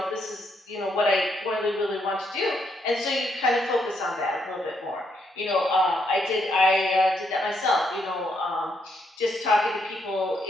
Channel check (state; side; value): normal; both; correlation 0.75